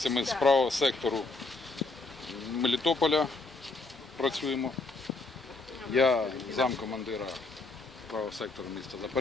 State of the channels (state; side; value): quieter; right; 3.5 dB